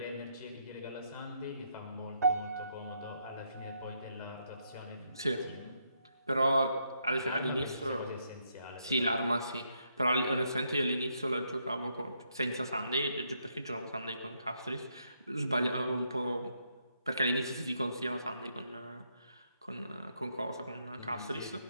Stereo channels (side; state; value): both; inverted; correlation -0.76